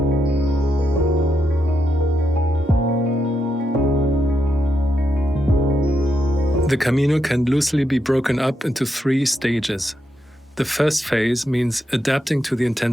The Camino can loosely be broken up into 3 stages. The first phase means adapting to the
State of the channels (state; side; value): normal; both; correlation 0.82